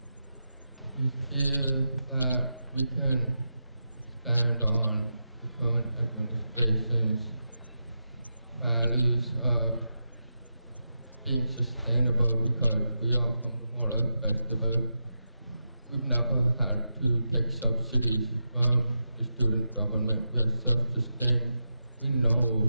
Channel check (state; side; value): inverted; both; correlation -0.89